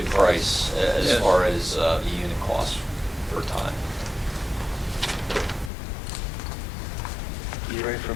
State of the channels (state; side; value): drops out; right; at 5.7 s